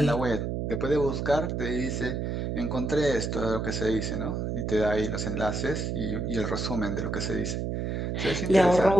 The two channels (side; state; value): right; noise; hum, 2 dB below the sound